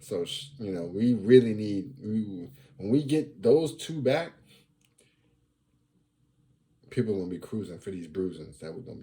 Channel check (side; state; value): both; identical; correlation 1.00